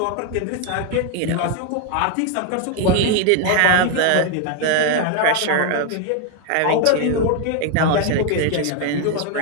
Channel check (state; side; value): different; both; correlation 0.01